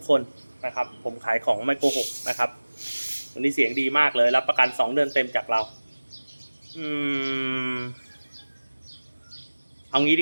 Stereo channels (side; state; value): both; inverted; correlation -1.00